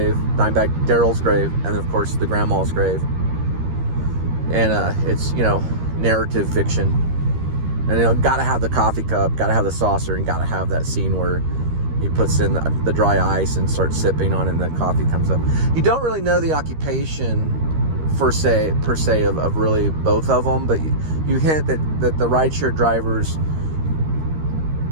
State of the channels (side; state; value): left; late; 13 ms